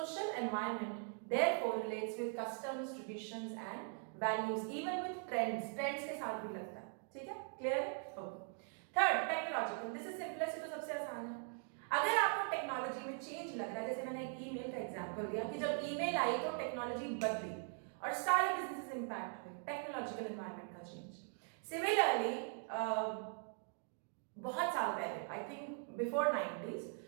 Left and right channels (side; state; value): left; silent; 50 dB below the other